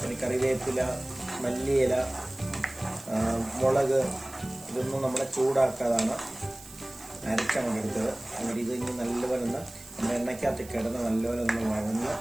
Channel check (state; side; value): noise; right; hiss, 18 dB below the sound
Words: കറിവേപ്പില, മല്ലിയില, മുളക് ഇതൊന്നും നമ്മളെ ചൂടാക്കാതാണ് അരച്ചങ്ങോട്ട് എടുത്തത്. എന്നിട്ട് ഇത് ഇനി നല്ലപോലെ ഒന്ന് നമ്മുടെ എണ്ണയ്ക്കകത്ത് കിടന്ന് നല്ലപോലെ ഒന്ന് വഴന്ന്